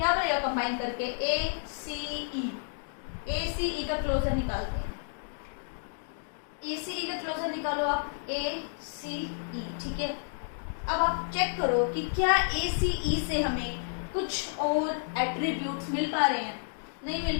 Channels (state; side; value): silent; right; digital silence